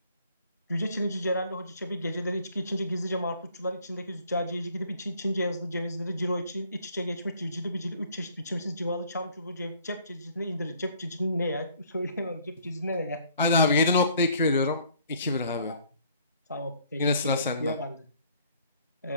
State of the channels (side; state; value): both; inverted; correlation -0.59